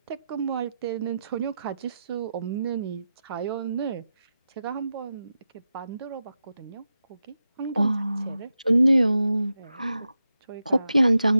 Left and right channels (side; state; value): both; inverted; correlation -0.90